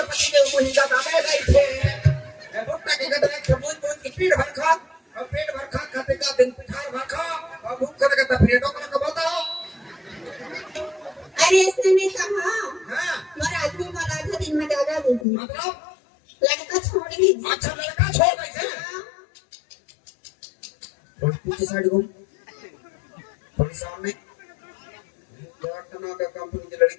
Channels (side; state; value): right; drops out; at 15.2 s